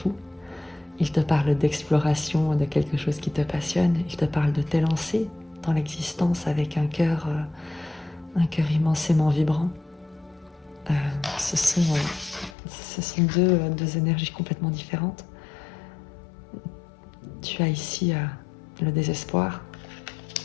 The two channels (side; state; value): right; drops out; at 12.6 s